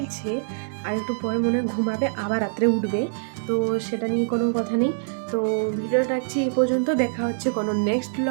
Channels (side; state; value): left; silent; digital silence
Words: আর একটু পরে মনে হয় ঘুমাবে, আবার রাত্রে উঠবে। তো সেটা নিয়ে কোনো কথা নেই। তো ভিডিওটা রাখছি এই পর্যন্ত, দেখা হচ্ছে কোনো নেক্সট